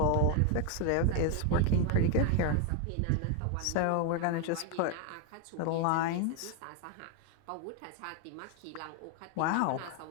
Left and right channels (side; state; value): both; different; correlation 0.01